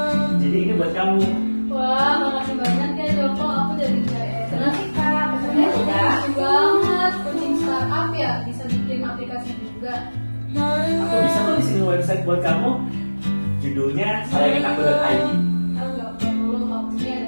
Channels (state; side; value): inverted; both; correlation -1.00